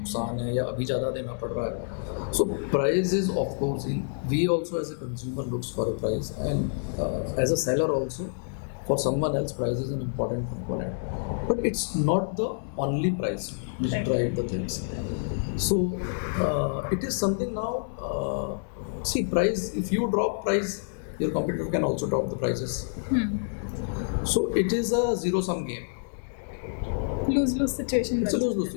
है, या अभी ज़्यादा देना पड़ रहा है. So price is of course, we also as a consumer looks for a price, and as a seller also for someone else price is an important component, but it's not the only price which drive the things. So it is something now, see, price, if you drop price, your competitor can also drop the prices. So it is a zero sum game, lose-lose situation. It's a lose-lose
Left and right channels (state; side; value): silent; right; digital silence